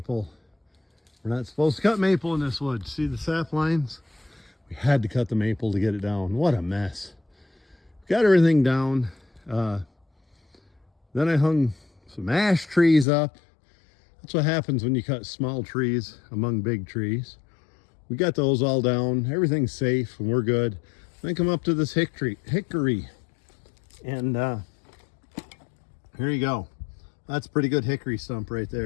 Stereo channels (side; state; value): right; drops out; at 13.1 s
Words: We're not supposed to cut maple in this wood. See the sap lines? We had to cut the maple to get it down. What a mess. Got everything down. Then I hung some ash trees up. That's what happens when you cut small trees among big trees. We got those all down. Everything's safe and we're good. Then come up to this hickory. And here you go. That's a pretty good hickory stump right